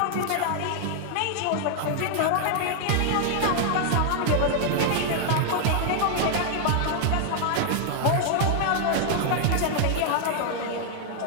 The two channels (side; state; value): both; different; correlation 0.00